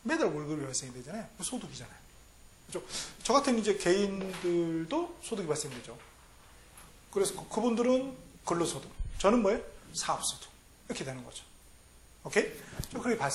매달 월급이 발생이 되잖아요. 소득이잖아요. 그죠? 저 같은 이제 개인들도 소득이 발생되죠. 그래서 그분들은 근로소득, 저는 뭐예요? 사업소득. 이렇게 되는 거죠. 오케이? 그렇게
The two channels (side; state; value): both; identical; correlation 1.00